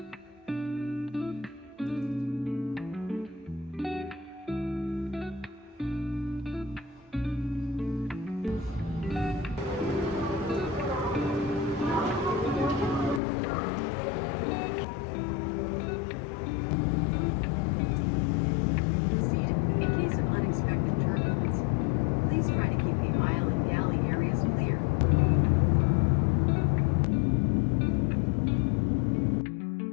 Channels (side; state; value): right; drops out; at 13.2 s